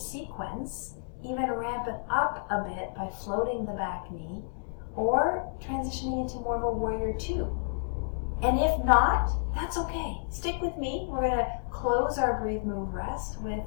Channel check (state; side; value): silent; right; digital silence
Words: even ramp it up a bit by floating the back knee, or transitioning into more of a warrior two. And if not, that's okay. Stick with me. We're going to close our breathe, move, rest with